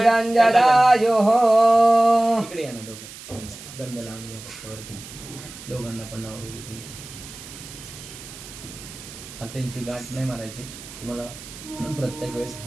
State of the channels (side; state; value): right; noise; hiss, 15 dB below the sound